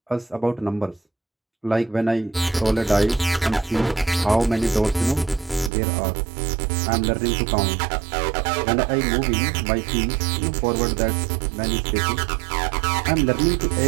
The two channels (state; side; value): drops out; left; at 5.7 s